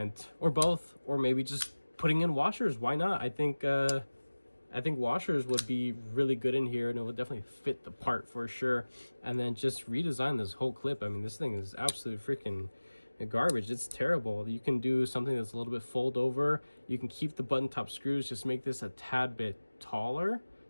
or both, or maybe just putting in washers. Why not? I think washers would be really good in here, and it would definitely fit the part for sure. And then just redesign this whole clip. I mean, this thing is absolute freaking garbage. It's terrible. You can do something that's a little bit fold over. You can keep the button top screws, just make this a tad bit taller,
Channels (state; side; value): inverted; both; correlation -1.00